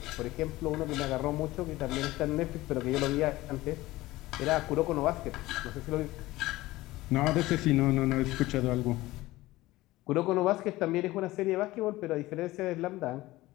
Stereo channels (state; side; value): quieter; right; 18.1 dB